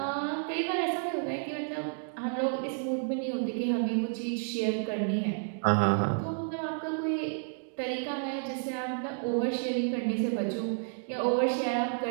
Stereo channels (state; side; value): silent; left; digital silence